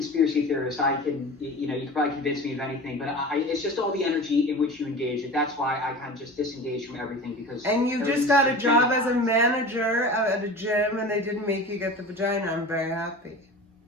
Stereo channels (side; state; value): both; normal; correlation 0.35